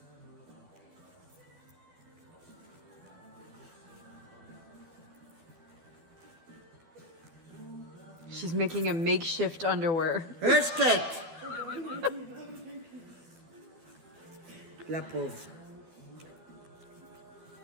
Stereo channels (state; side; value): late; left; 12 ms